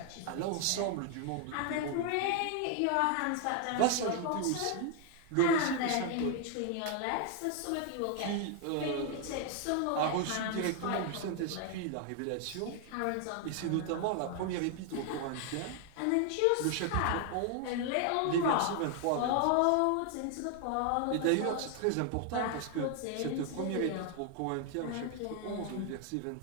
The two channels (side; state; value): both; different; correlation 0.00